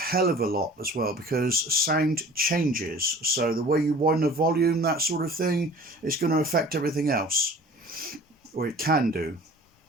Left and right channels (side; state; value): both; normal; correlation 0.46